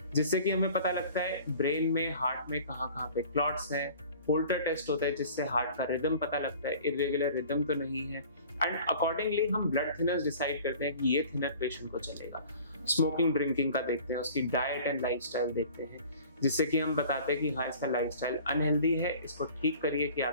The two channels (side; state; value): both; inverted; correlation -0.46